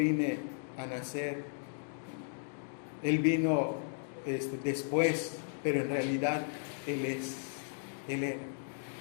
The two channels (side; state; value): right; silent; digital silence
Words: a nacer. Él vino después, pero en realidad Él era.